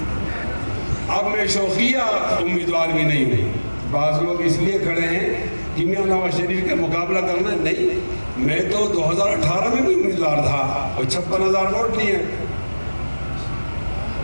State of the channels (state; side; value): inverted; both; correlation -1.00